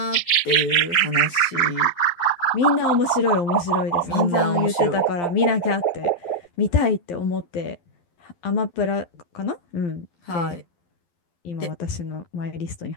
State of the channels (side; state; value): right; late; 12 ms